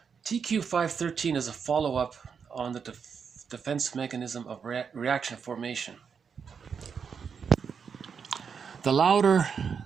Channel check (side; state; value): left; quieter; 6.4 dB